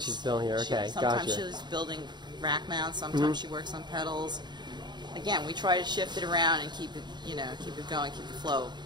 sometimes she's building here. Okay, Sometimes gotcha. she's building rack mounts. Sometimes she works on pedals. Again, we try to shift it around and keep it, you know, keep it going, keep the flow.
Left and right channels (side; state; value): left; late; 0.21 ms